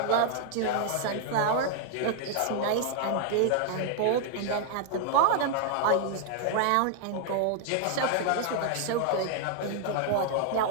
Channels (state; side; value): different; both; correlation 0.00